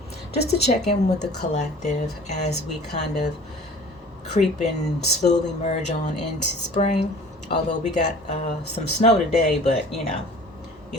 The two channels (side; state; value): both; normal; correlation 0.46